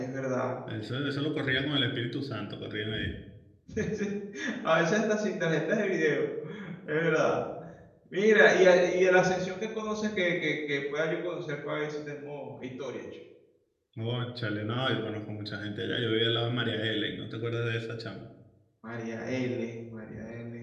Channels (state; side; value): identical; both; correlation 1.00